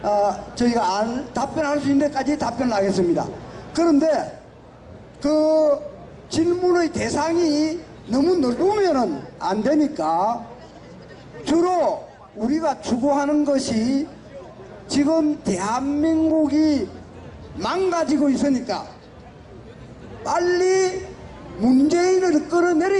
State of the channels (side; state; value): both; identical; correlation 1.00